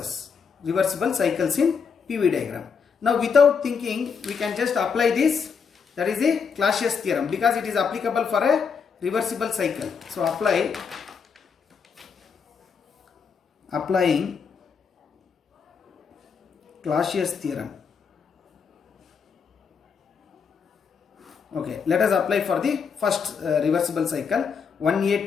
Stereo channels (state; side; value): quieter; right; 6.1 dB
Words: reversible cycles in PV diagram. Now without thinking, we can just apply this, that is a Clausius theorem, because it is applicable for a reversible cycle. So applying Clausius theorem. Okay, let us apply for the first reversible cycle, 1A